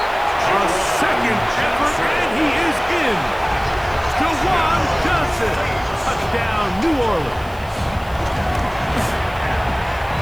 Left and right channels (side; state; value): right; noise; hiss, 25 dB below the sound